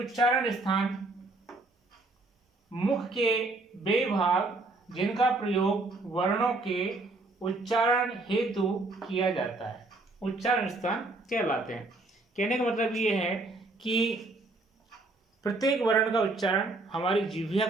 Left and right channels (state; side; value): quieter; left; 3.1 dB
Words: स्थान मुख के वे भाग जिनका प्रयोग वर्णों के उच्चारण हेतु किया जाता है, उच्चारण स्थान कहलाते हैं। कहने का मतलब ये है कि प्रत्येक वर्ण का उच्चारण हमारी जिह्वा